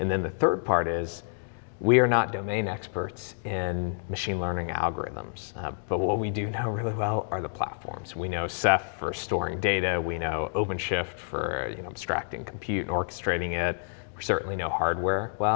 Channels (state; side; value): silent; right; digital silence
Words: then the third part is, we are not domain experts in machine learning algorithms, but what we do know really well are the platforms. We know Ceph for storing data, we know OpenShift for abstracting compute and orchestrating it. We certainly know hardware